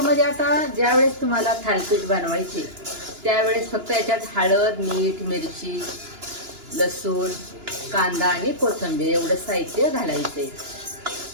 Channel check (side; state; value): left; late; 2.9 ms